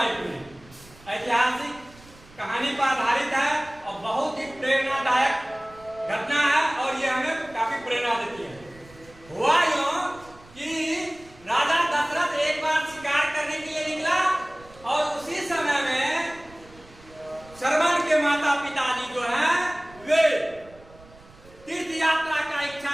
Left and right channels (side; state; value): right; noise; rumble, 24 dB below the sound